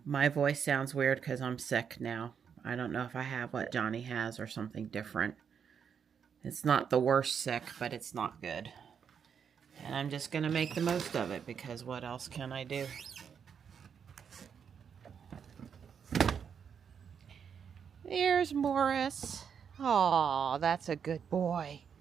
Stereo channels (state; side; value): quieter; left; 7.2 dB